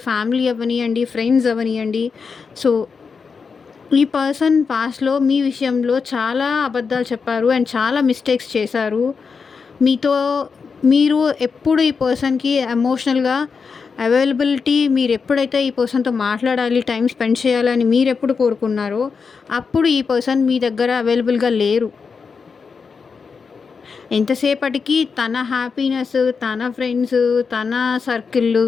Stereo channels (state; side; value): quieter; right; 5.4 dB